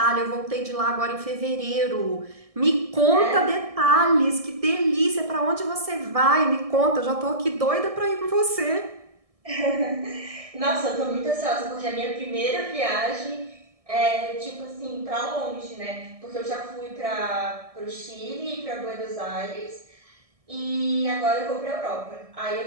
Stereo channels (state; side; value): late; left; 1.6 ms